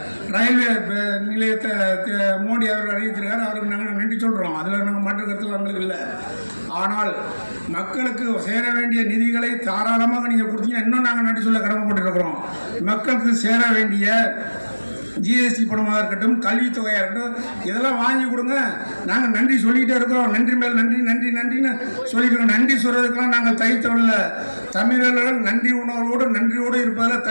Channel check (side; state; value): both; inverted; correlation -1.00